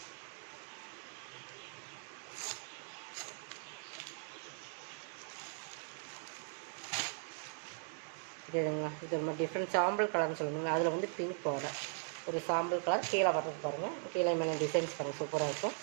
இதுங்களா, இது ஒரு மாதிரி டிஃப்ரெண்ட் சாம்பிள் கலர்னு சொல்லுவீங்க. அதில் வந்து பிங்க் பார்டர், ஒரு சாம்பிள் கலர். கீழே வர்றது பாருங்கள். கீழே மேலே டிசைன்ஸ் பாருங்கள், சூப்பராக இருக்கும்.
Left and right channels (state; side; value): silent; left; 52 dB below the other